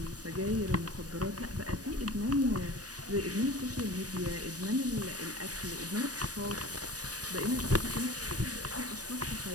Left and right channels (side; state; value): left; late; 0.68 ms